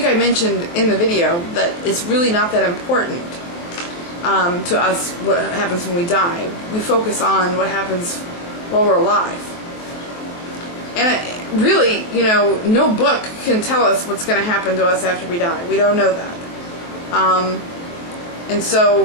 I mentioned in the video that it's really not that important to us what happens when we die. We focus on what happens while we're alive. And really, no book can tell us what's going to happen to us after we die. We don't know that. And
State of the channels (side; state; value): right; late; 23 ms